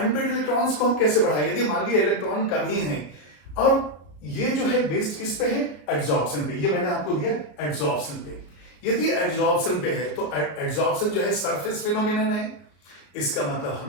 इलेक्ट्रॉन्स को हम कैसे बढ़ाएं? यदि मान लीजिए इलेक्ट्रॉन कम ही है, और ये जो है बेस्ड किस पे है? एड्सॉर्प्शन पे। ये मैंने आपको दिया एड्सॉर्प्शन पे। यदि एड्सॉर्प्शन पे है तो एड्सॉर्प्शन जो है सरफेस फिनोमिनन है, इसका मतलब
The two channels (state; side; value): late; right; 33 ms